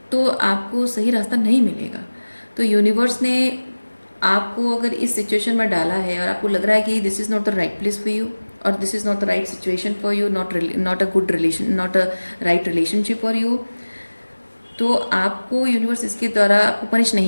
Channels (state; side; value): inverted; both; correlation -1.00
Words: तो आपको सही रास्ता नहीं मिलेगा। तो यूनिवर्स ने आपको अगर इस सिचुएशन में डाला है और आपको लग रहा है कि this is not the right place for you और this is not the right situation for you, not a good relation, not a right relationship for you, तो आपको यूनिवर्स इसके द्वारा आपको पनिश